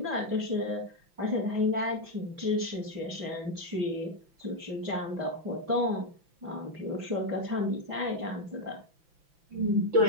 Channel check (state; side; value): late; left; 5.9 ms